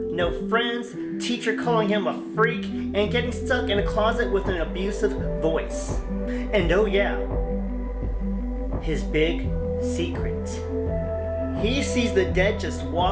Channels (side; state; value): both; identical; correlation 1.00